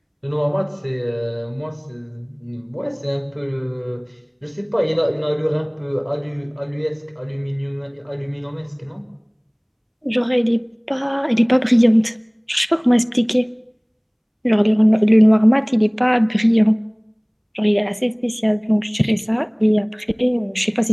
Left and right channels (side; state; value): both; identical; correlation 1.00